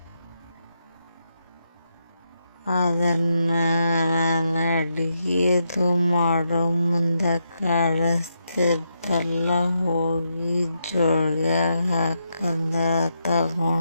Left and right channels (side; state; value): both; inverted; correlation -0.82